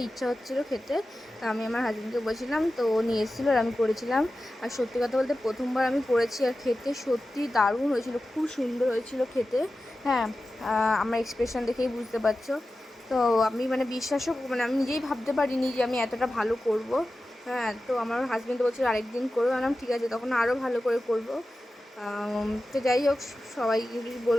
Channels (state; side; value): normal; both; correlation 0.94